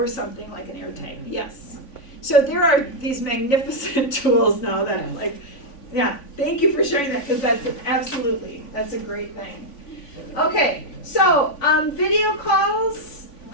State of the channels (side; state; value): right; late; 3.5 ms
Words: something like an AirTag, yes. So there are these magnificent tools now that yeah, thank you for sharing that, because that's a great thing. Okay, so video calls,